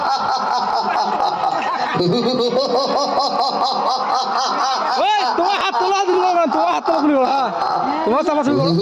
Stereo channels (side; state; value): both; identical; correlation 1.00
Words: তোমার হাত তোলা দিল না, তোমার হাত তোলা দিল না, তোমার চাপাচাপি করো।